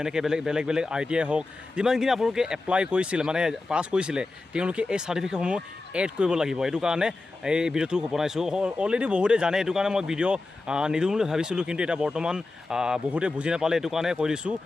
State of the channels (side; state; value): right; quieter; 3.3 dB